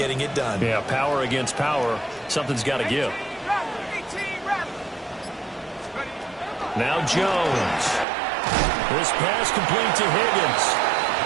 it done. Yeah, power against power. Something's got to give. Now Jones. This pass complete to Higgins.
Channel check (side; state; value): left; drops out; at 8.1 s